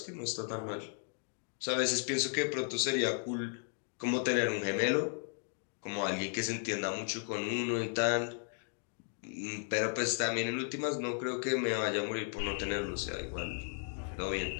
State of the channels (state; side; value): silent; right; 54 dB below the other